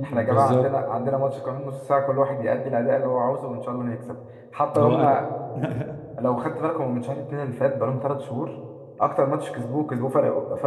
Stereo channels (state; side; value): identical; both; correlation 1.00